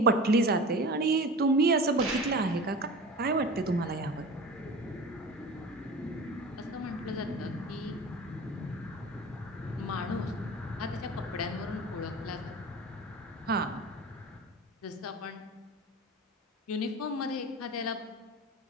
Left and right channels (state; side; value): normal; both; correlation 0.34